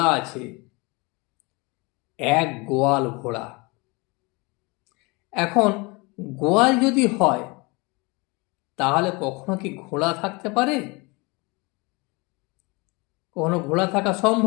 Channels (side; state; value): right; quieter; 26.8 dB